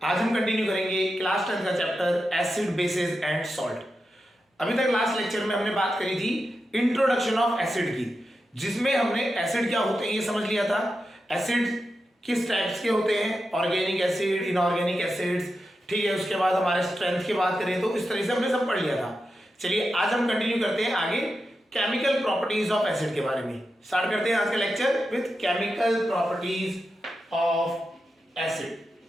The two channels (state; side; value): normal; both; correlation 0.89